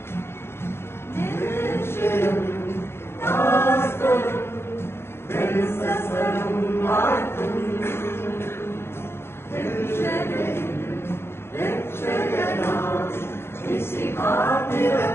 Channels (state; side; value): late; right; 0.12 ms